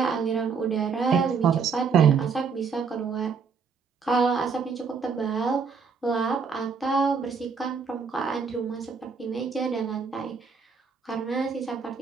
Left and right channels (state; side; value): quieter; left; 5.6 dB